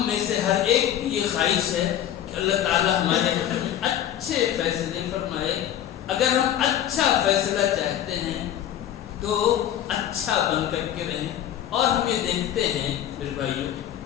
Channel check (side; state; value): right; quieter; 11.0 dB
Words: میں سے ہر ایک کی یہ خواہش ہے کہ اللہ تعالیٰ ہمارے حق میں اچھے فیصلے فرمائے۔ اگر ہم اچھا فیصلہ چاہتے ہیں تو اچھا بن کر کے رہیں۔ اور ہم یہ دیکھتے ہیں میرے بھائیوں